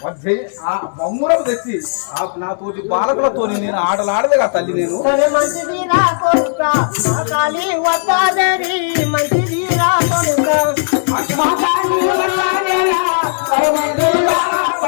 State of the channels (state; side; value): silent; right; digital silence